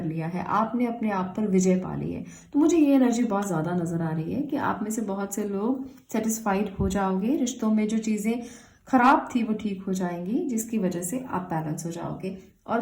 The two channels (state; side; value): identical; both; correlation 1.00